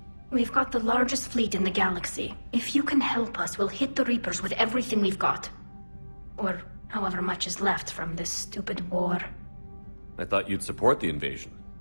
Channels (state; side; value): inverted; both; correlation -1.00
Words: We've got the largest fleet in the galaxy. If you can help us, we'll hit the Reapers with everything we've got. Or however much is left from this stupid war. I thought you'd support the invasion.